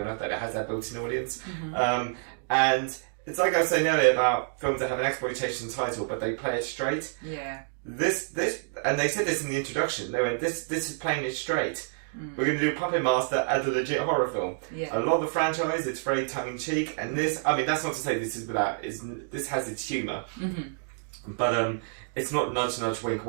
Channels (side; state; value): left; silent; digital silence